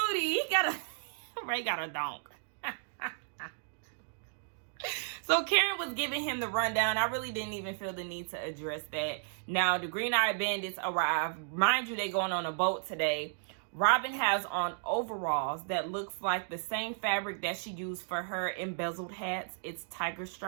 Booty. Ray got a donk. So Karen was giving him the rundown. I really didn't even feel the need to address that. Now, the green-eyed bandits arrive. Mind you, they going on a boat today. Robin has on overalls that looks like the same fabric that she used for her embezzled hats. It's tiger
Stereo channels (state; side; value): silent; left; digital silence